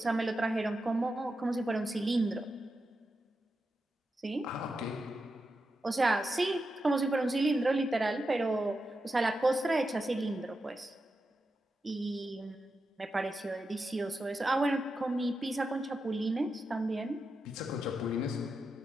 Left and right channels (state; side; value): normal; both; correlation 0.89